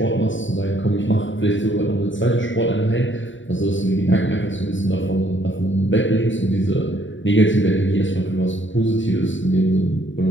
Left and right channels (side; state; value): right; late; 0.55 ms